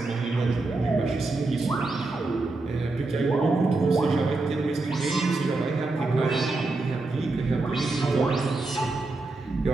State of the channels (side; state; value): left; quieter; 3.3 dB